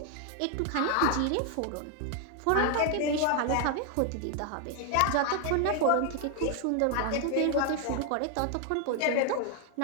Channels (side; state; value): both; different; correlation 0.01